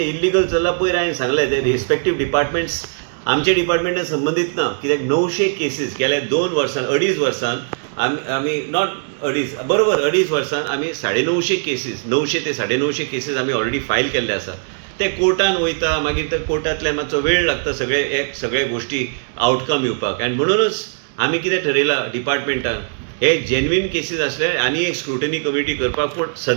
इल्लिगल चल्लां पयर हांवें सांगलें ते रिस्पेक्टीव डिपार्टमेंट्स आमच्या डिपार्टमेंटान संबंदीत ना कित्याक 900 केसीस गेल्या 2 वर्सां 2.5 वर्सान आमी नॉट 2.5 वर्सान आमी 950 केसीस 900 ते 950 केसीस आमी ऑलरेडी फायल केल्ले आसा ते कोर्टान वयता मागीर ते कोर्टांतल्यान मातसो वेळ लागता सगळे गोश्टी आउटकम येवपाक आनी म्हणूनच आमी कितें ठरयलां डिपार्टमेंटान हे जेन्युइन केसीस आसल्यार आनी एक स्क्रुटनी कमिटी करपाक पूण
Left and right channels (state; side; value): silent; left; 65 dB below the other